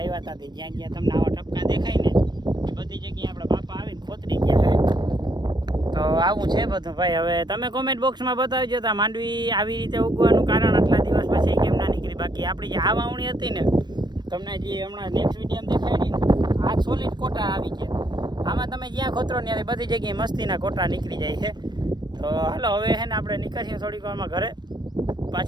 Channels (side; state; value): left; late; 0.21 ms